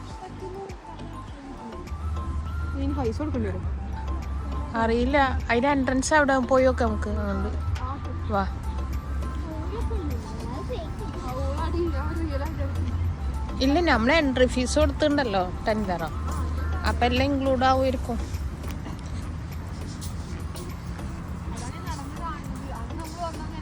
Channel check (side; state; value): both; identical; correlation 1.00